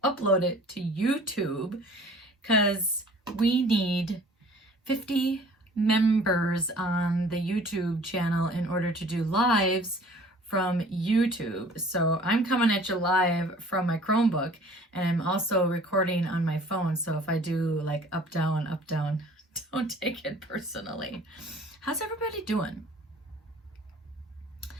upload it to YouTube, because we need 50 members on the YouTube channel in order to do lives from YouTube. So I'm coming at you live from my Chromebook, and I'm also recording on my phone. So if I do like up, down, don't take it personally. How's everybody doing?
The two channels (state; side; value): normal; both; correlation 0.50